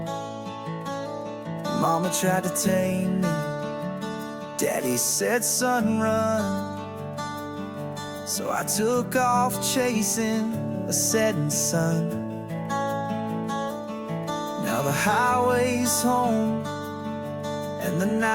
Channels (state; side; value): identical; both; correlation 1.00